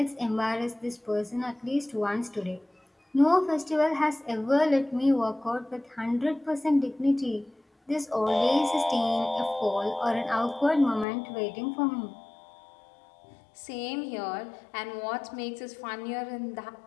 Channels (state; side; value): drops out; right; at 11.1 s